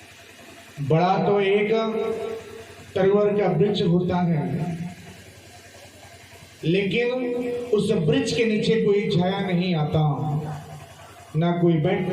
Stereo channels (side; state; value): both; identical; correlation 1.00